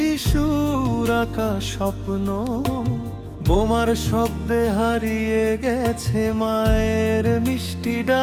আঁকা স্বপ্ন, বোমার শব্দে হারিয়ে গেছে মায়ের মিষ্টি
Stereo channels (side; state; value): both; identical; correlation 1.00